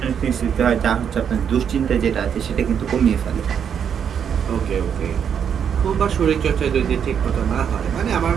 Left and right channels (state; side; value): quieter; left; 7.9 dB